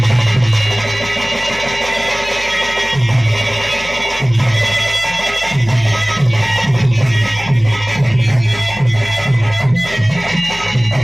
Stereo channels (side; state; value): left; noise; hum, 17 dB below the sound